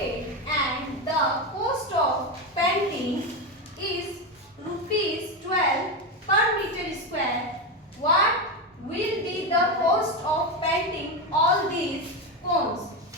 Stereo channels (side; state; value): both; normal; correlation 0.13